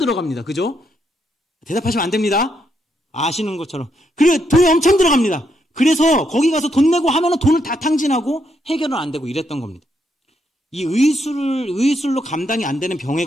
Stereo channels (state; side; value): normal; both; correlation 0.78